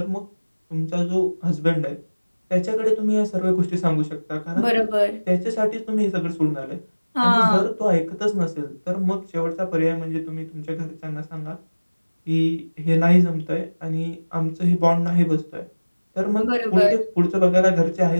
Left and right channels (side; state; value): both; inverted; correlation -1.00